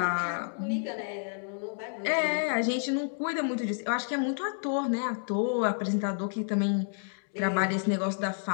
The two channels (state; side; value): silent; right; digital silence